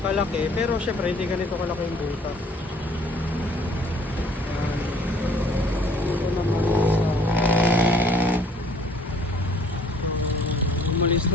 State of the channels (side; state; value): both; normal; correlation 0.55